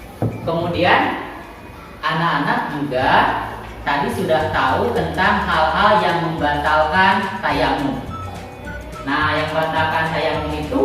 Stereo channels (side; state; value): both; identical; correlation 1.00